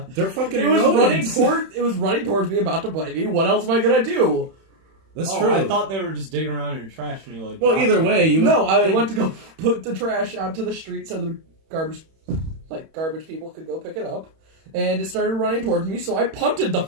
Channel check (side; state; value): left; late; 31 ms